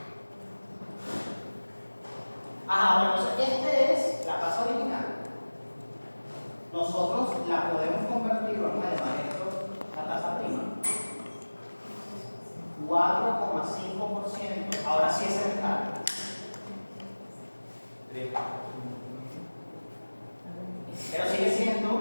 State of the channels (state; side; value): inverted; both; correlation -1.00